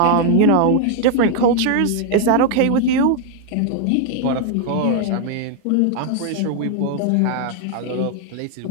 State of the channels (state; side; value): different; both; correlation 0.00